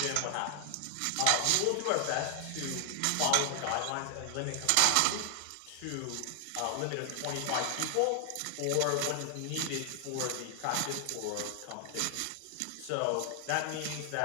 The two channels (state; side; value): different; both; correlation 0.00